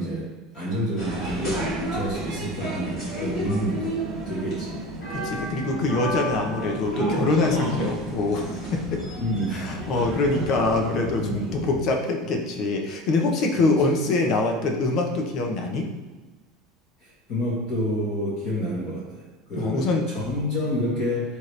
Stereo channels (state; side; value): normal; both; correlation 0.34